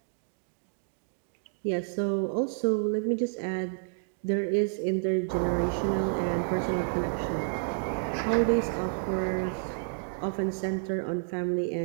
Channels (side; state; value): left; silent; digital silence